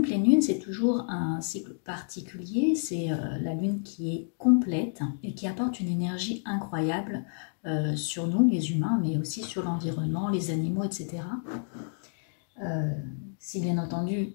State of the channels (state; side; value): silent; right; digital silence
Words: pleine lune, c'est toujours un cycle particulier, c'est la lune qui est complète et qui apporte une énergie incroyable sur nous, les humains, mais aussi sur l'environnement, les animaux, etc. Si bien entendu